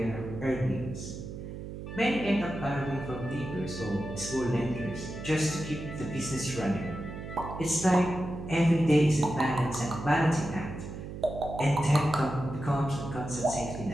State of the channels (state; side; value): noise; right; hum, 9 dB below the sound